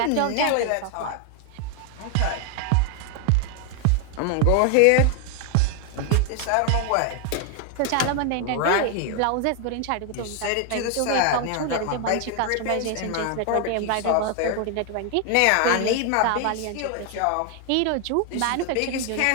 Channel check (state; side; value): different; both; correlation 0.00